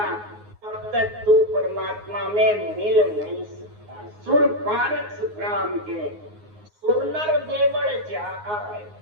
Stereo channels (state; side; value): late; left; 9.6 ms